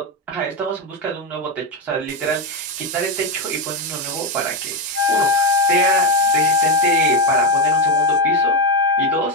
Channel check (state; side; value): normal; both; correlation 0.08